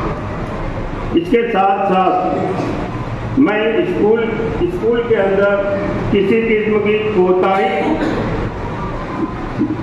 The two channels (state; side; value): identical; both; correlation 1.00